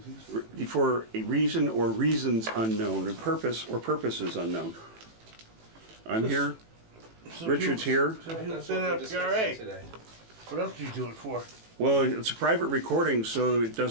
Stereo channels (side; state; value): left; late; 18 ms